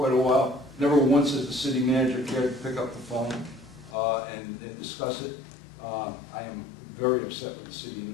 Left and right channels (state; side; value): drops out; right; at 4.0 s